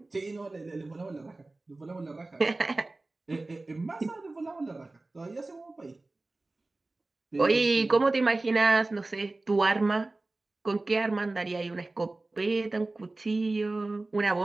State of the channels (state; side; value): quieter; left; 3.1 dB